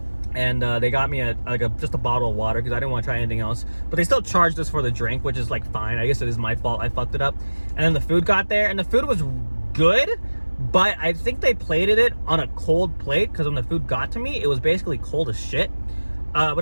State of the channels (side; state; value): both; inverted; correlation -1.00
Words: And they got me just a bottle of water because I didn't want to try anything else. But they still charged us for the drink, which is like fine. I guess it is my fault. I fucked it up. And then the food got there and the food was good. But I think they plated it on a cold plate because when the food got to me, it was basically cold as shit. But